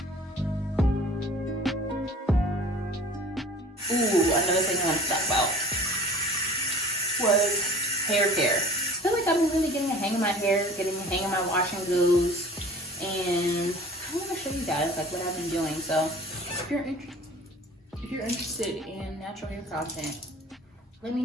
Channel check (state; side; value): normal; both; correlation 0.46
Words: Ooh, another thing I want to talk about was hair care. I feel like I've been really getting a hang of my hair, getting a hang of my wash and goes, and I want to show you guys like what I've been doing. So if you're interested in natural hair content, let me